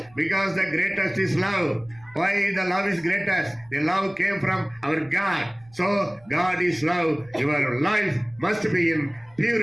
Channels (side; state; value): right; noise; rumble, 28 dB below the sound